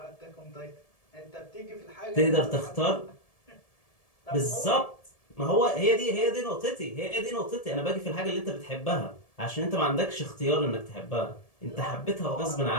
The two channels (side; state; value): right; late; 1.7 ms